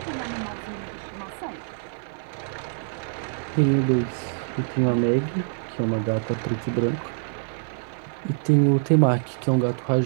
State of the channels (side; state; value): left; silent; 56 dB below the other